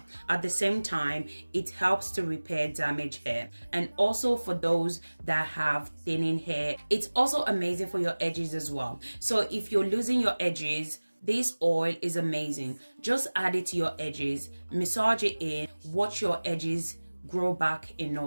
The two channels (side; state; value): both; inverted; correlation -1.00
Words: At the same time, it helps to repair damaged hair, and also for those that have thinning hair. It's also amazing for your edges as well. So if you're losing your edges, this oil is amazing. Just add it to your edges, massage it in, watch your edges grow back in